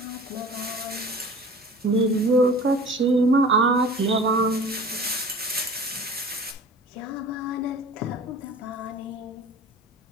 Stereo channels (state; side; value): normal; both; correlation 0.42